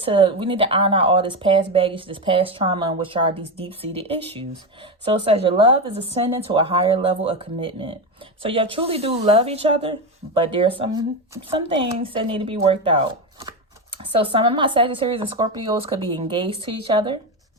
iron out all this past baggage, this past trauma, and which are these deep-seated issues. So it says your love is ascending to a higher level of commitment. So y'all truly do love each other, but there's some things that need to be worked out. So some of my Sagittarius and Scorpios could be engaged to each other.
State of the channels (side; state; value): both; normal; correlation 0.14